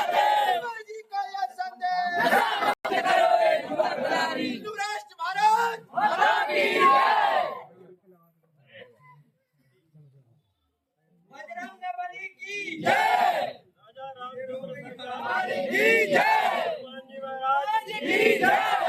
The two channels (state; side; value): identical; both; correlation 1.00